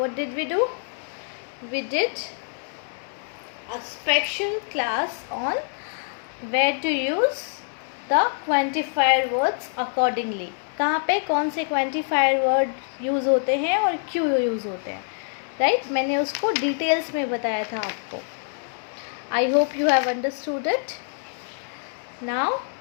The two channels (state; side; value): silent; right; 62 dB below the other